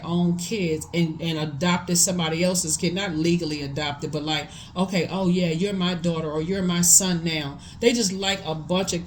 own kids and adopted somebody else's kid. Not legally adopted, but like, okay, oh yeah, you're my daughter or you're my son now. They just like a bunch of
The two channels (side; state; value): both; identical; correlation 1.00